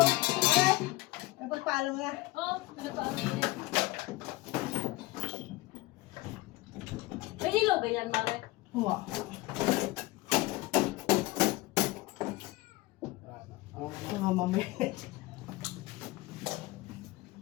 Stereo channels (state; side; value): quieter; right; 20.3 dB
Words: Napagpalo na. Oh, pinagpaano niya. May ilaw ba yan, Mare? Huwa. Mga mamay.